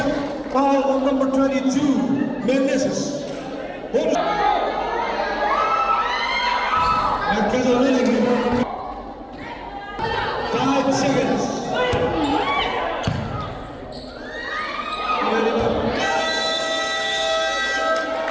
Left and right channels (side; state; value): both; identical; correlation 1.00